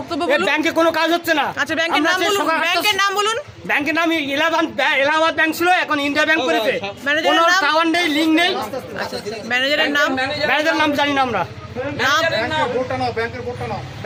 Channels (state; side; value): identical; both; correlation 1.00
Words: বলুন। ব্যাংকে কোনো কাজ হচ্ছে না। আচ্ছা ব্যাংকের নাম বলুন, ব্যাংকের নাম বলুন। ব্যাংকের নাম এলাহাবাদ ব্যাংক ছিল, এখন ইন্ডিয়া ব্যাংক করেছে। কোনো টাওয়ার নেই, লিঙ্ক নেই। ম্যানেজারের নাম? ম্যানেজারের নাম জানি না আমরা।